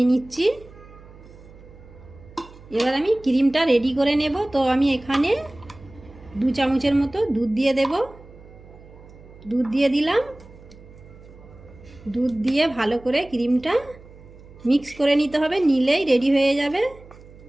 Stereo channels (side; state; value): right; noise; hum, 21 dB below the sound